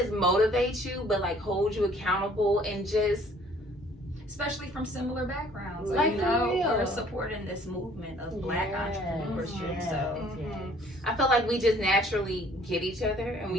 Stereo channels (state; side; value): normal; both; correlation 0.57